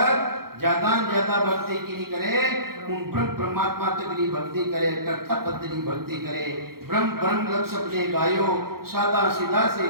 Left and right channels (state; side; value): late; left; 0.94 ms